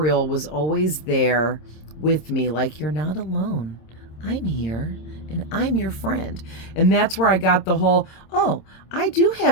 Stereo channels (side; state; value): right; late; 26 ms